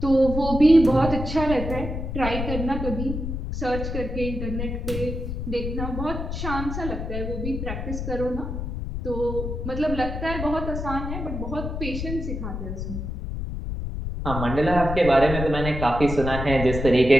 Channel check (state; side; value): noise; left; rumble, 5 dB below the sound